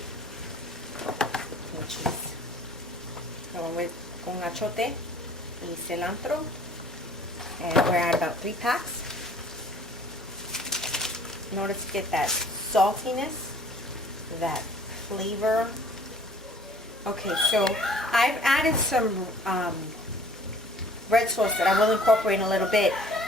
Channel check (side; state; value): both; normal; correlation 0.53